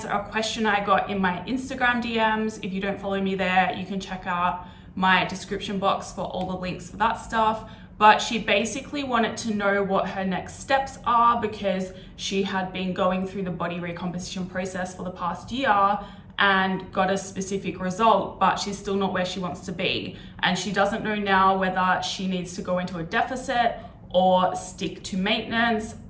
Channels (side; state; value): both; identical; correlation 1.00